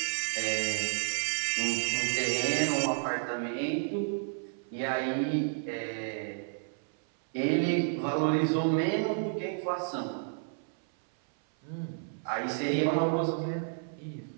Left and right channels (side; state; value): left; silent; 57 dB below the other